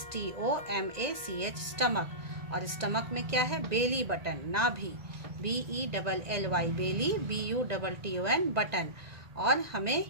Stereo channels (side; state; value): left; late; 2.0 ms